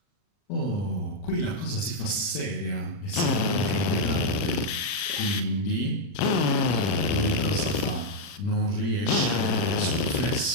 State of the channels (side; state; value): right; late; 40 ms